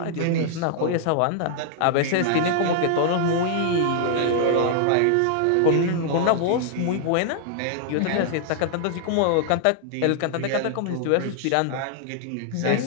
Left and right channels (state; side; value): different; both; correlation -0.01